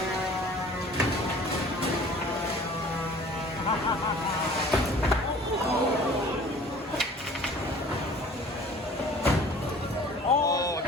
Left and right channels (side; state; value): both; normal; correlation 0.48